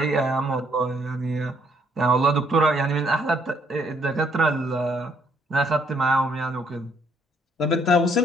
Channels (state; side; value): normal; both; correlation 0.68